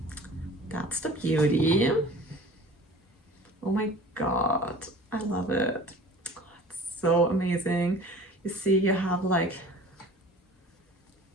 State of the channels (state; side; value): normal; both; correlation 0.44